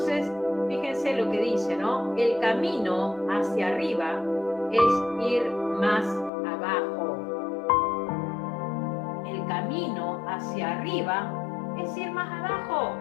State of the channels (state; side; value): drops out; right; at 6.3 s